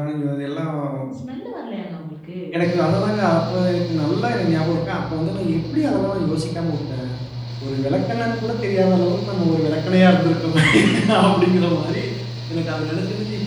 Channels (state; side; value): identical; both; correlation 1.00